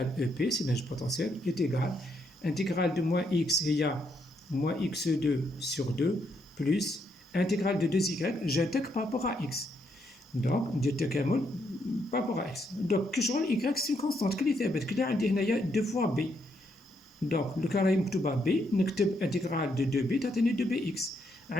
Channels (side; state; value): both; normal; correlation 0.76